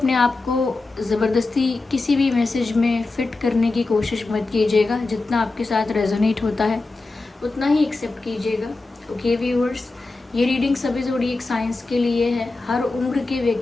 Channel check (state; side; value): quieter; right; 3.4 dB